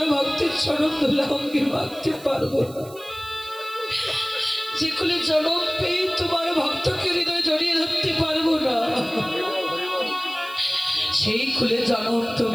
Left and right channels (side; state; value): right; noise; hiss, 20 dB below the sound